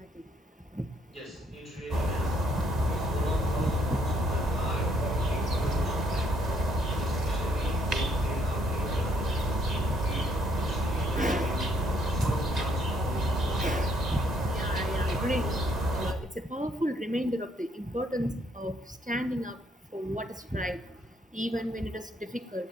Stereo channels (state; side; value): normal; both; correlation 0.69